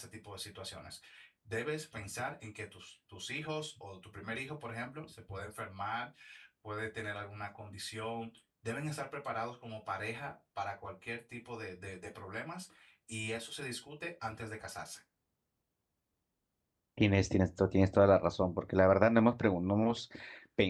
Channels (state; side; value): identical; both; correlation 1.00